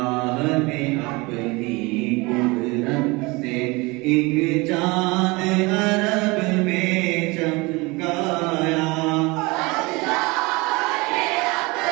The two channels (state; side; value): quieter; left; 24.7 dB